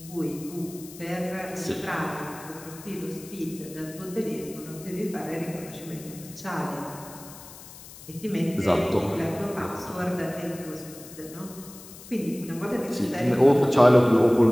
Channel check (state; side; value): noise; left; hiss, 17 dB below the sound